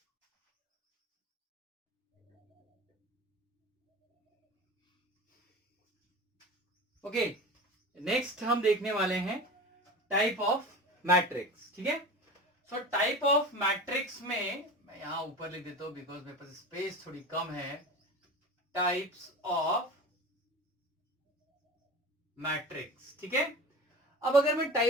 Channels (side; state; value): both; normal; correlation 0.33